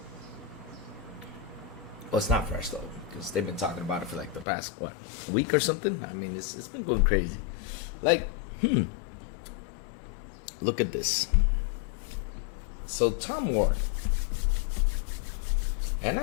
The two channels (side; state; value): right; drops out; at 4.5 s